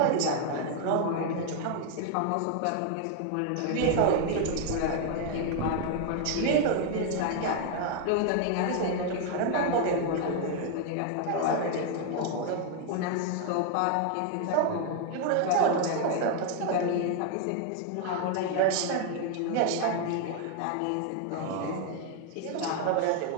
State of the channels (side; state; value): both; different; correlation 0.00